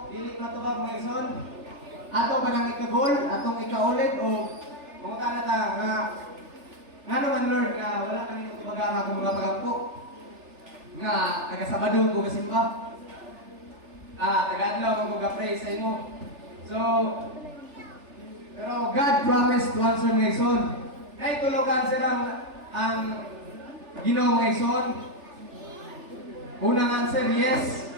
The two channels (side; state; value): left; late; 3.4 ms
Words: dili na tubag mga igsoon, ato ba nang ikagol, atong ikaulit, o kung na ta nga naman Lord, na wala kami tubaga ang atong mga pagampo, nga taga-Sabado ko kasimba, taga-adlaw ko ka-pray sa imo. So, pero God promised to answer mga igsoon. Ay tulukan silang ang Ginoo mga igsoon. Unang answer, yes.